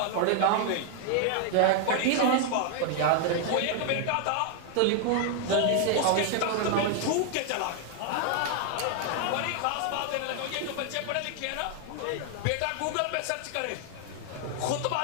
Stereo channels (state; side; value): different; both; correlation 0.00